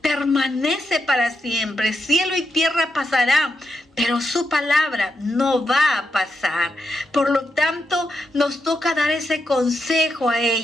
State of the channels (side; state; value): both; normal; correlation 0.84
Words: permanece para siempre. Cielo y tierra pasarán, pero su palabra no va a pasar. Por lo tanto, nos toca dar ese consejo a